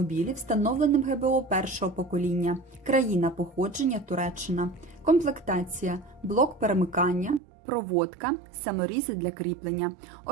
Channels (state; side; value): drops out; left; at 7.4 s